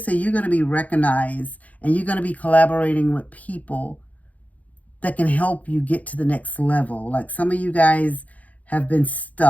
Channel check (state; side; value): late; right; 0.073 ms